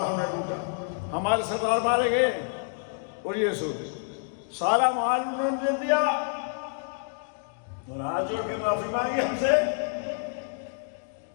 ہم نے لوٹا، ہمارے سردار مارے گئے اور یہ سوچ سارا مال انہوں نے دے دیا اور ہاتھ جوڑ کے معافی مانگی ہم سے۔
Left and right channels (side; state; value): right; silent; digital silence